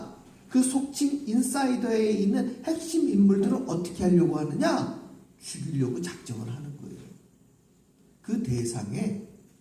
그 속칭 인사이더에 있는 핵심 인물들을 어떻게 하려고 하느냐? 죽이려고 작정을 하는 거예요. 그 대상에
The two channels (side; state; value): both; identical; correlation 1.00